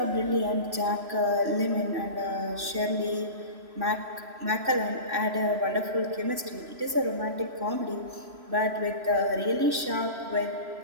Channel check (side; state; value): left; late; 3.0 ms